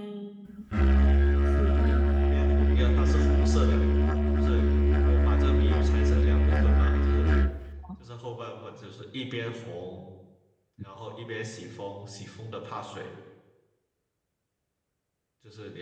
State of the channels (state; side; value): identical; both; correlation 1.00